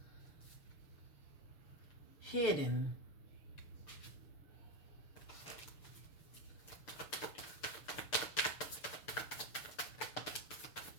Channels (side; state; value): right; late; 6.9 ms